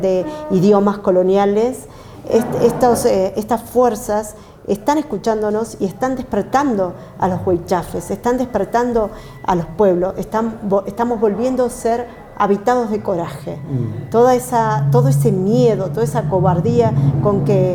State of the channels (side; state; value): both; identical; correlation 1.00